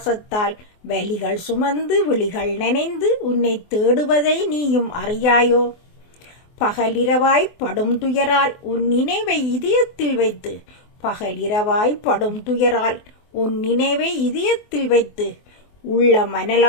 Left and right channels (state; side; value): late; right; 24 ms